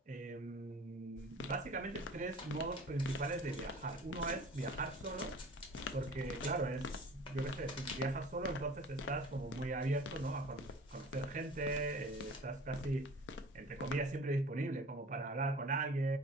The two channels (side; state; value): both; normal; correlation 0.43